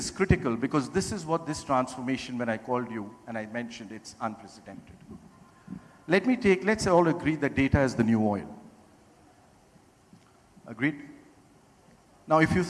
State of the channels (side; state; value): both; identical; correlation 1.00